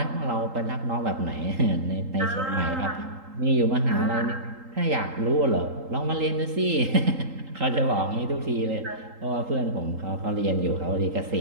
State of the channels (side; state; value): left; late; 3.8 ms